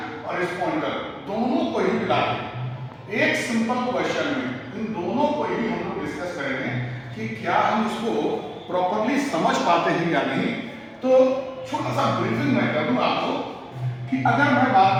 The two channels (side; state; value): both; identical; correlation 1.00